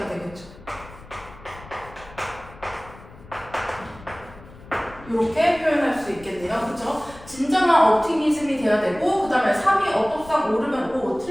되겠죠. 이렇게 표현할 수 있겠네요. 그렇죠? 진정한 옵티미즘이 돼야 되고 그 다음에 3이 어법상 오르면 O,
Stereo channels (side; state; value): left; noise; rumble, 19 dB below the sound